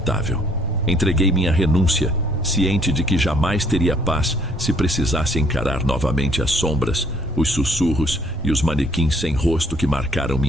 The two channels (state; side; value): normal; both; correlation 0.63